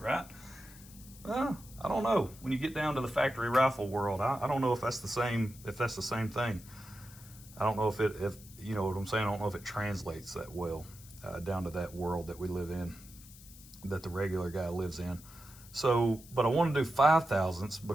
Well, I don't know. When you get down to the factory rifle world, I don't know if that's the same. If that's the same thing, I don't know if you know what I'm saying. I don't know if it translates that well down to that world that we live in, that the regular guy lives in. So, but I want to do 5/1000ths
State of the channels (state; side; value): noise; left; hiss, 20 dB below the sound